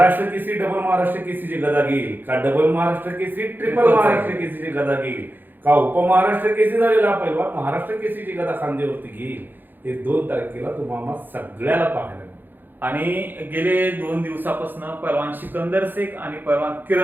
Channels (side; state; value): left; late; 0.091 ms